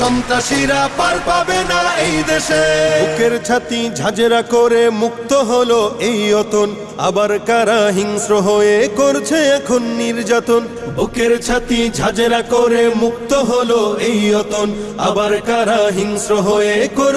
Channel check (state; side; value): identical; both; correlation 1.00